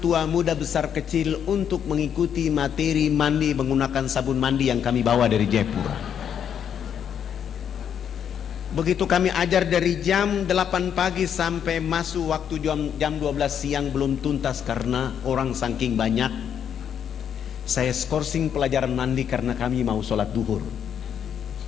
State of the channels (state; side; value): quieter; right; 8.5 dB